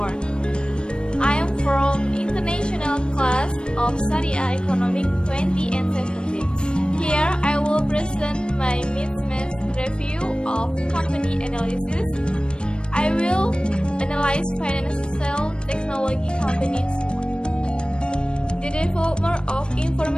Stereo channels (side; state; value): right; late; 0.054 ms